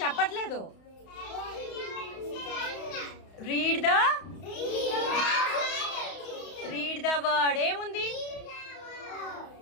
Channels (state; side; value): late; right; 31 ms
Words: చెప్పట్లేదు. Read the word. ఏముంది?